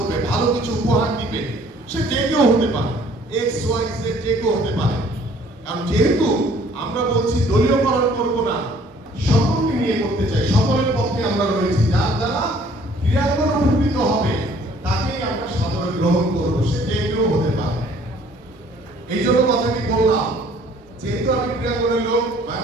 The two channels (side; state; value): both; normal; correlation 0.57